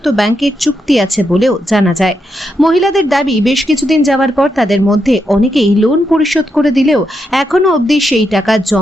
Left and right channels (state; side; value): normal; both; correlation 0.83